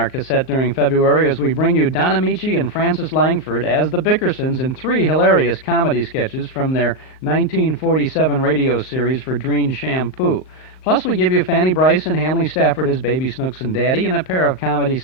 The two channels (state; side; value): late; right; 38 ms